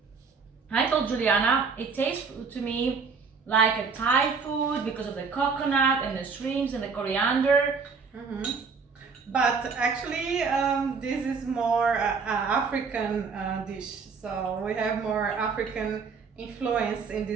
I told Juliana, it tastes to me like a Thai food because of the coconut and the shrimps and the coriander. But actually, this is more African dish. So we have more African influence in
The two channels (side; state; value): left; quieter; 5.2 dB